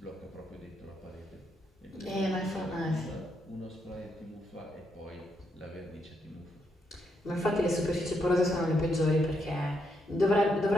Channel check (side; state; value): both; normal; correlation 0.79